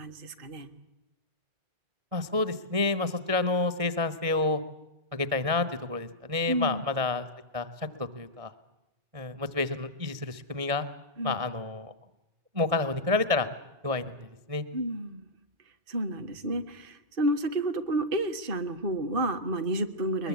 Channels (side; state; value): left; late; 1.6 ms